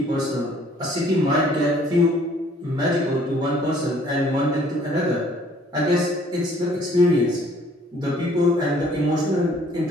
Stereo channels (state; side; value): normal; both; correlation 0.59